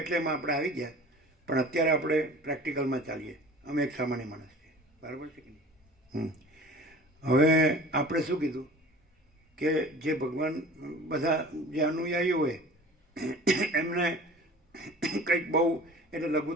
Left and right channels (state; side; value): normal; both; correlation 0.42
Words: એમાં આપણે આવી ગયા, પણ અત્યારે આપણે પ્રેક્ટિકલમાં ચાલીએ. અમે એક સામાન્ય માણસ છીએ, બરાબર છે કે નહીં? હવે આપણે શું કીધું કે જે ભગવાન બધા જે અનુયાયીઓ હોય એમને કંઈક બહુ એટલે